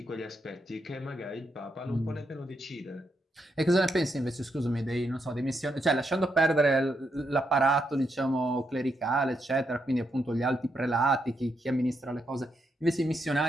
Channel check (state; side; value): normal; both; correlation 0.80